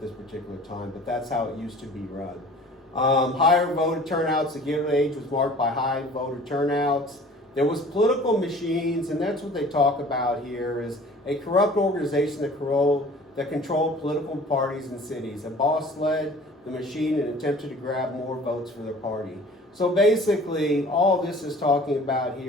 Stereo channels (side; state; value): both; normal; correlation 0.47